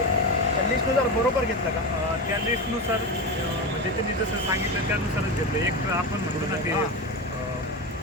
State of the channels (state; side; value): normal; both; correlation 0.19